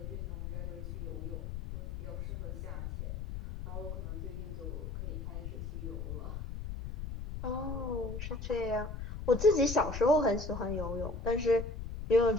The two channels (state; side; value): noise; left; rumble, 6 dB below the sound